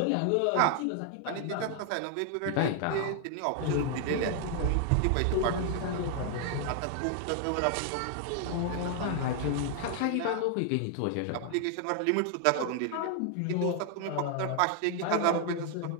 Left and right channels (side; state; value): both; different; correlation 0.00